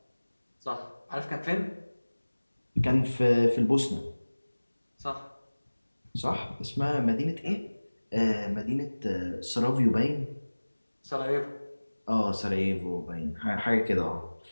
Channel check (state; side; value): inverted; both; correlation -1.00